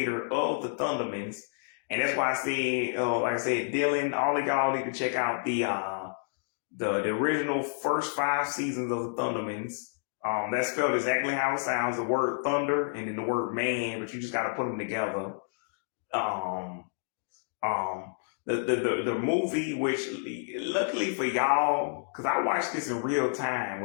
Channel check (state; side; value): silent; right; digital silence